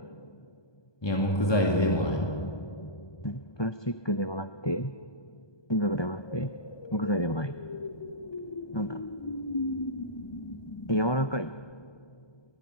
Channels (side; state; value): right; late; 1.2 ms